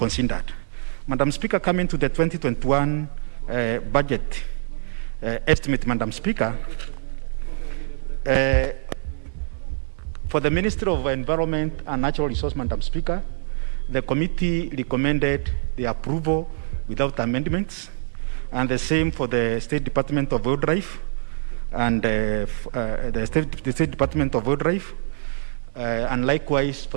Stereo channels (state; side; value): silent; left; digital silence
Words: Madam Speaker, coming to the 2021 budget estimate, Madam Speaker, for the Ministry of Environment and Natural Resources, Madam Speaker, the committee recommended the approval without amendments, and the same for the State Department of Wildlife and the State Department of Wildlife, and likewise